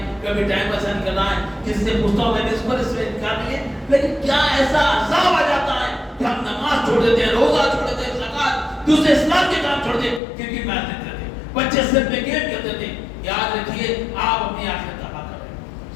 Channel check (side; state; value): right; drops out; at 10.2 s